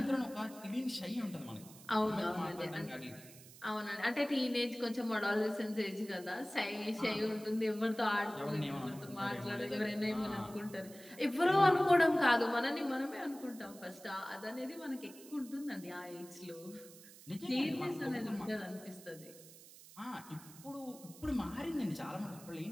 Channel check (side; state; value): right; noise; hiss, 19 dB below the sound